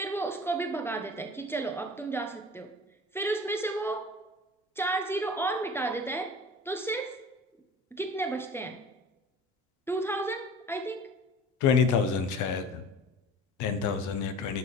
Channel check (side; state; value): both; normal; correlation 0.41